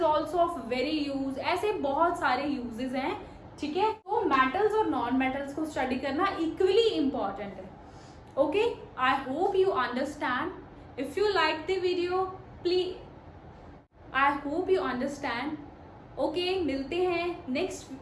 also of very use. ऐसे बहुत सारे यूजेस हैं, ठीक है. तो मेटल्स और नॉन मेटल्स को स्टडी करना इक्वली इम्पॉर्टेंट है. Okay, I hope you understand. If you like the video please, I hope you understand. Okay, मिलते हैं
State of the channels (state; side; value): identical; both; correlation 1.00